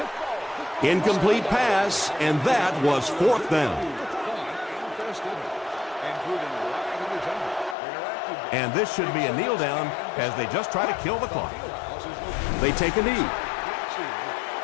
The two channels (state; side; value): drops out; right; at 7.8 s